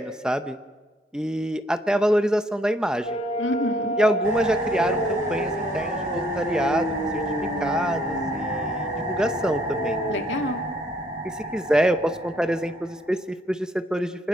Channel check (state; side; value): normal; both; correlation 0.66